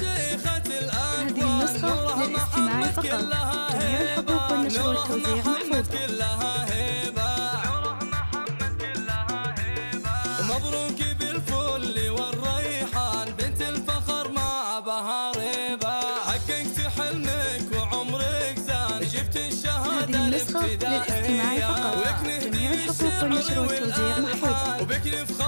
الأكوان نورها محمد كلها هيبة، نورها محمد كلها هيبة. مبروك بالفل والريحان بنت الفخر مع بهاريبة، حققت حلمك وعمرك زان جبت الشهادة الابتدائية، وبك نهدي الشعر والألحان وبك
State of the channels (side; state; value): both; inverted; correlation -1.00